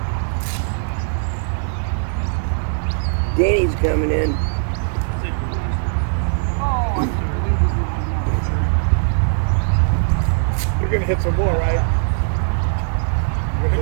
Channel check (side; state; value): left; silent; digital silence